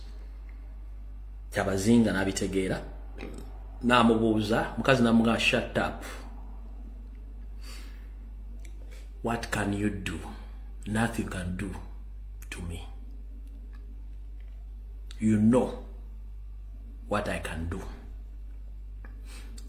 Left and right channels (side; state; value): both; identical; correlation 1.00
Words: kyabazinga nabitegeera namubuuza mukazi namugamba shut up what can you do nothing can do to me you know what I can do